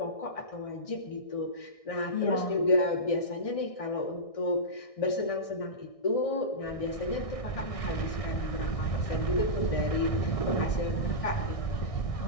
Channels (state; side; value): late; right; 1.6 ms